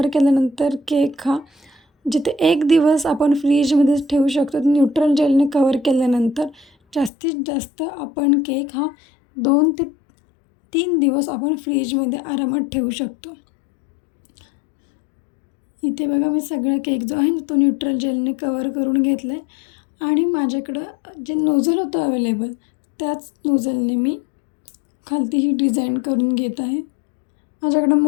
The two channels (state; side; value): drops out; right; at 7.1 s